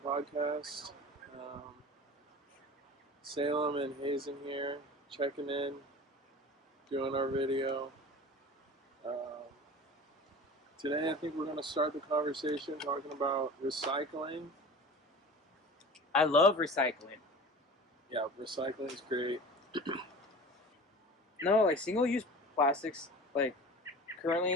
podcast. Salem and Hazen here, checking in, doing our video. Um, Today, I think we're going to start the conversation talking about recycling. I love recycling. Yeah, recycling is great. No, like single-use plastics, like currently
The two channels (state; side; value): normal; both; correlation 0.37